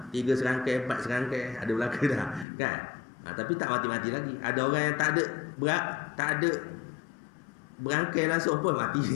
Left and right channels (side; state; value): right; drops out; at 2.5 s